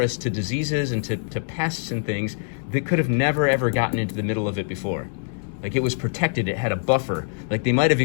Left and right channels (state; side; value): silent; right; 63 dB below the other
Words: to diseases and to pests and things that could have never ever gotten into the middle of it before. Like, it was protected, it had a buffer. Like, they might have